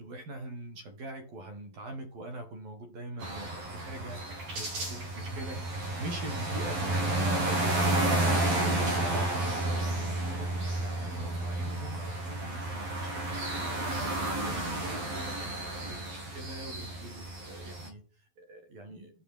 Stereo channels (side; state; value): left; late; 12 ms